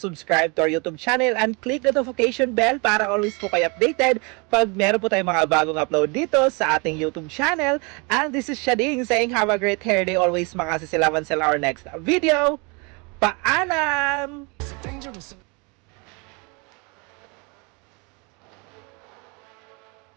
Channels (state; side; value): quieter; left; 30.8 dB